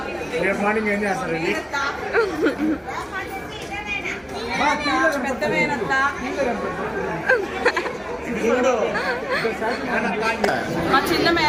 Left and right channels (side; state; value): both; identical; correlation 1.00